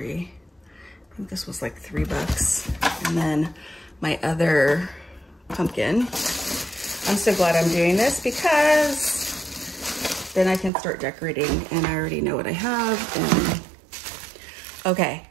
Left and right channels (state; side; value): drops out; left; at 10.7 s